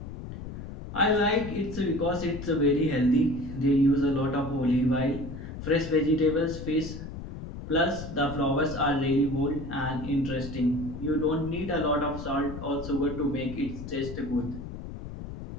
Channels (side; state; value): left; noise; rumble, 9 dB below the sound